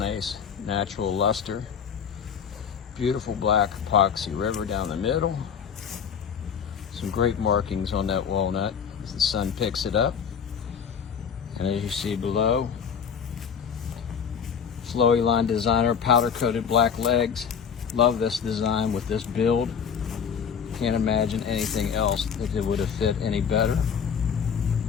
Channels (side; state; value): right; quieter; 7.2 dB